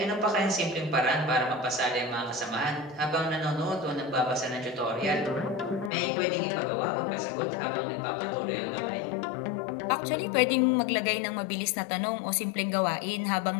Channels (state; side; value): drops out; right; at 5.9 s